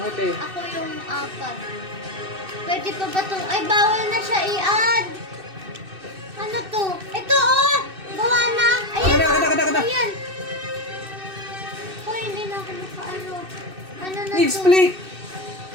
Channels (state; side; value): late; left; 2.6 ms